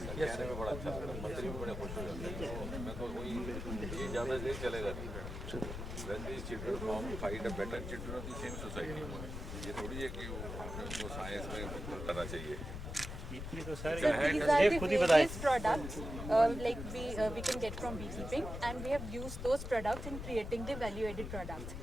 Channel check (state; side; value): noise; left; rumble, 7 dB below the sound